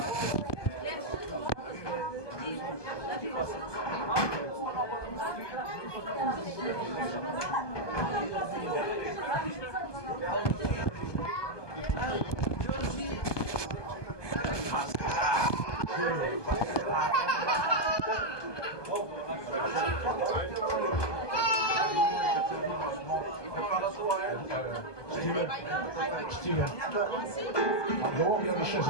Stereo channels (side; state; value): right; late; 1.2 ms